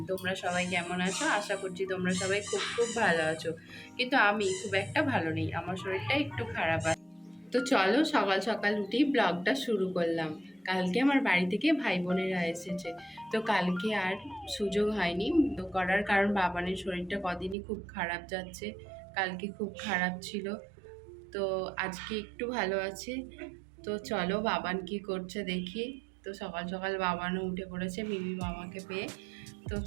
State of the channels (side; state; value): left; drops out; at 17.6 s